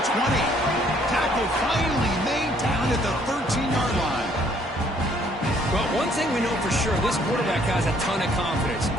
20. Tackle finally made down at the 13-yard line. Well, one thing we know for sure, this quarterback has a ton of confidence.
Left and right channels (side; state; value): both; normal; correlation 0.64